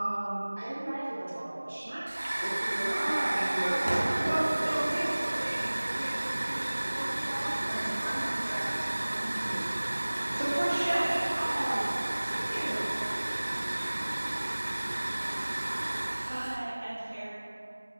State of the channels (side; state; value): both; inverted; correlation -1.00